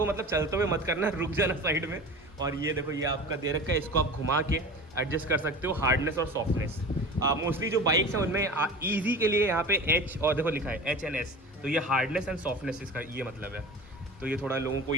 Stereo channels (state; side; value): normal; both; correlation 0.35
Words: मतलब चलते हुए मत करना, रुक जाना साइड में। और ये देखो ये आपका दे रखा है, इसको आप घुमा के एडजस्ट कर सकते हो हार्डनेस और सॉफ्टनेस। मोस्टली जो बाइक्स हैं उनमें ईजी के लिए यहाँ पे H और देखो लिखा है HNS, तो ये हार्डनेस एंड सॉफ्टनेस इसका ये मतलब है। तो ये थोड़ा लोगों को